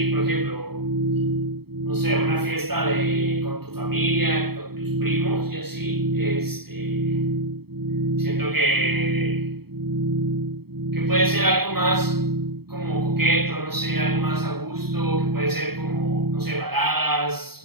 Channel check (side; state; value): left; late; 0.96 ms